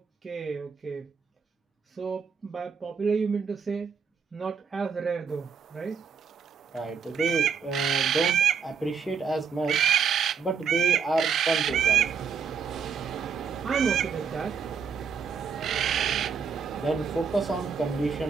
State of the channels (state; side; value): quieter; left; 6.2 dB